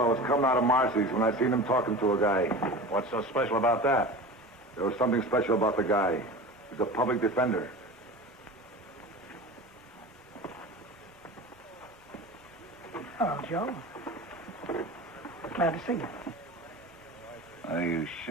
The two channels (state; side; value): normal; both; correlation 0.33